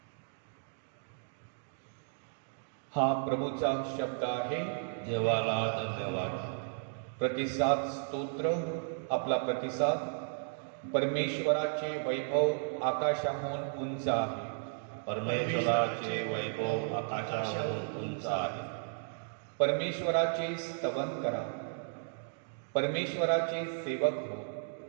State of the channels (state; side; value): silent; left; digital silence